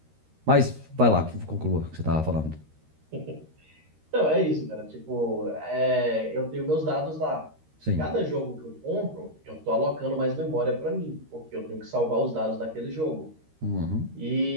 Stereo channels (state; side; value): late; left; 13 ms